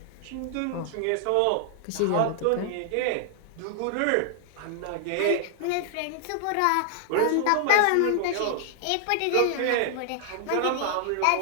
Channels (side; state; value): both; different; correlation 0.00